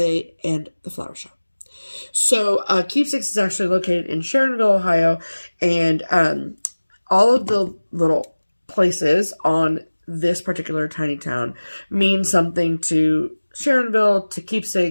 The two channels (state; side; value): inverted; both; correlation -1.00